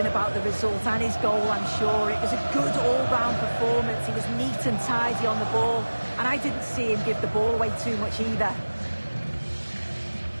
about the result and his goal, I'm sure. It was a good all-round performance. He was neat and tidy on the ball, and I didn't see him give the ball away too much either.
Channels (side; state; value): both; inverted; correlation -1.00